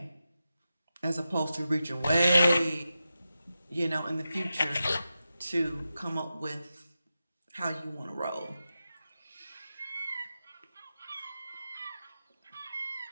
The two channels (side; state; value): both; inverted; correlation -0.91